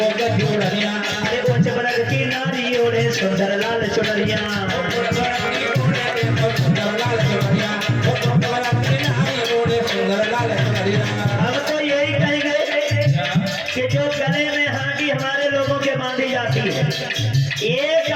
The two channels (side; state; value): both; identical; correlation 1.00